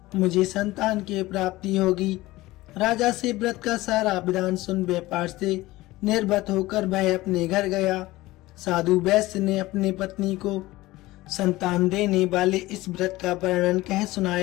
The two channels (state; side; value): quieter; right; 18.5 dB